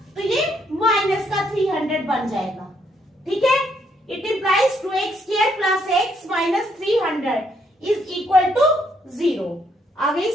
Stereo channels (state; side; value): normal; both; correlation 0.72